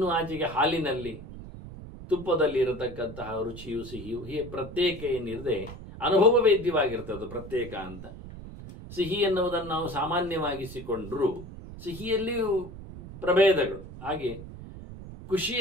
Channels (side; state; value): right; noise; rumble, 13 dB below the sound